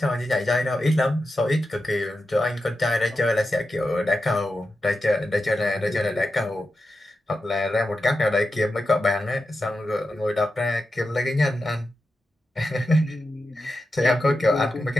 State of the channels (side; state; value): both; normal; correlation 0.90